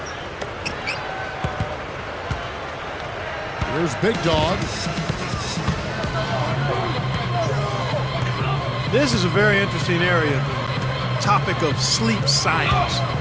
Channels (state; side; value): identical; both; correlation 1.00